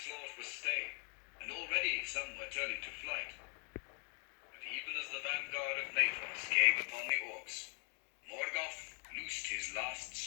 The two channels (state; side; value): quieter; right; 37.2 dB